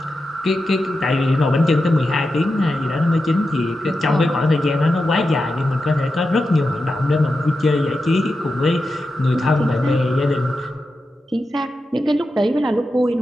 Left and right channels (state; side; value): normal; both; correlation 0.90